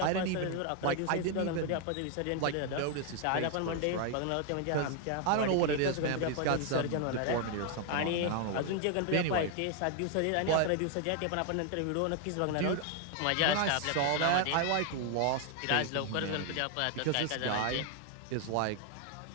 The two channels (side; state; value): both; different; correlation 0.00